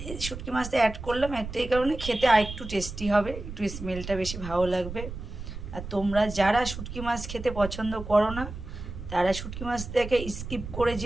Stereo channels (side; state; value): right; noise; rumble, 9 dB below the sound